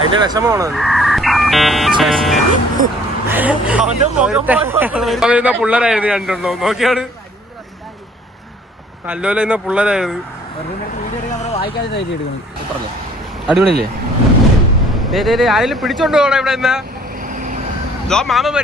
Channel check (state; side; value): normal; both; correlation 0.57